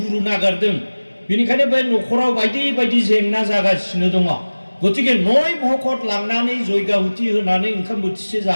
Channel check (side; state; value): both; inverted; correlation -1.00